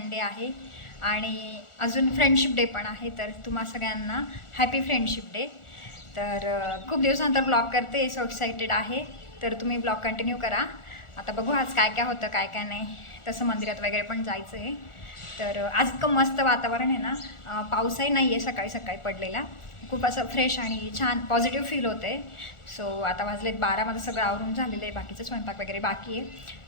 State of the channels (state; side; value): late; right; 1.4 ms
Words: आहे आणि अजून फ्रेंडशिप डे पण आहे. तर तुम्हा सगळ्यांना हॅपी फ्रेंडशिप डे. तर खूप दिवसानंतर ब्लॉग करते, सो एक्सायटेड आहे. तर तुम्ही ब्लॉग कंटिन्यू करा. आता बघू आज काय काय होतं काय काय नाही. तसं मंदिरात वगैरे पण जायचं आहे. तर आज इतकं मस्त वातावरण आहे ना, पाऊसही नाही आहे सकाळी सकाळी पडलेला. खूप असं फ्रेश आणि छान पॉझिटिव्ह फील होतं आहे. सो आता वाजलेत 12, माझं सगळं आवरून झालेलं आहे, बाकीचं स्वयंपाक वगैरे बाकी आहे.